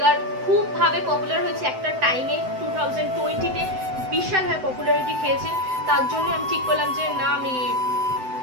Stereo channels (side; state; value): left; late; 7.8 ms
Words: খুব ভাবে পপুলার হয়েছে একটা টাইমে, 2020-তে বিশালভাবে পপুলারিটি খেয়েছে। তার জন্য আমি ঠিক করলাম যে না, আমি